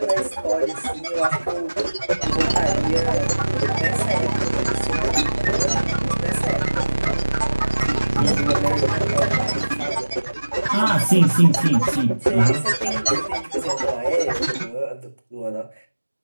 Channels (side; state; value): both; inverted; correlation -1.00